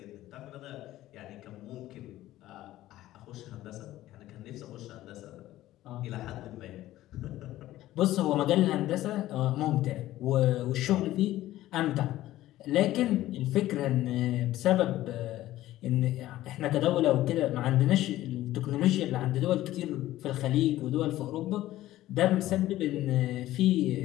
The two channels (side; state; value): right; quieter; 15.1 dB